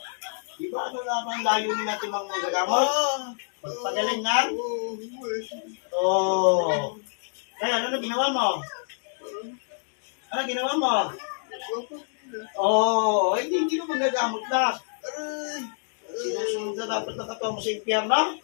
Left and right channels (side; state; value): right; silent; digital silence